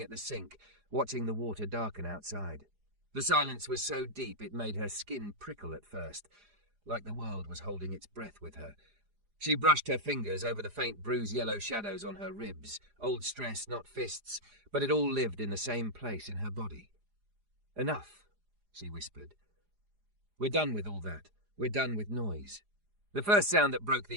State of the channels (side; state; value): left; late; 4.9 ms